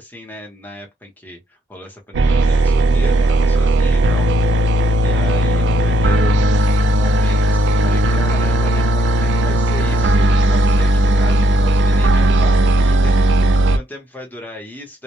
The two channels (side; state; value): both; normal; correlation 0.74